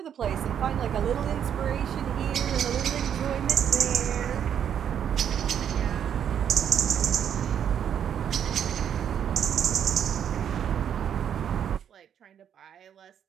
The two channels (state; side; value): quieter; left; 8.9 dB